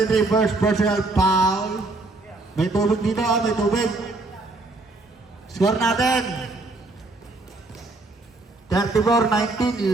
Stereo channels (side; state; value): left; quieter; 3.1 dB